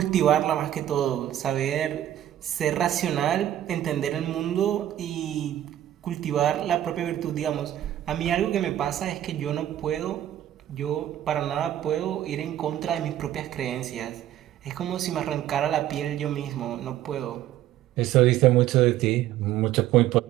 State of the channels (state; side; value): quieter; left; 12.2 dB